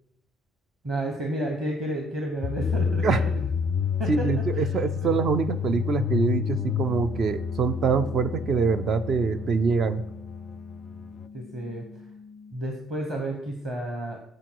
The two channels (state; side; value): normal; both; correlation 0.60